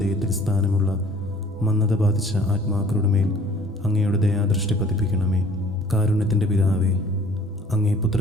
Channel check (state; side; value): normal; both; correlation 0.52